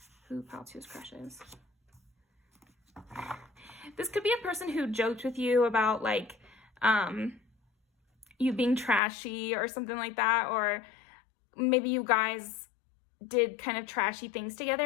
who pal 2's crush is. This could be a person who joked with you about like you being trashy or something like that, or maybe you guys did kind of trashy things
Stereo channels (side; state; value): right; drops out; at 9.0 s